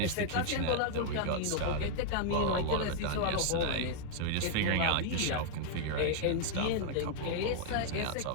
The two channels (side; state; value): both; different; correlation -0.01